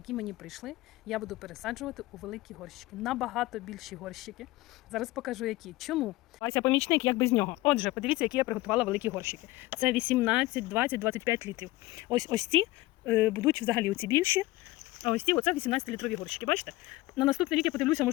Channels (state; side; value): quieter; right; 19.0 dB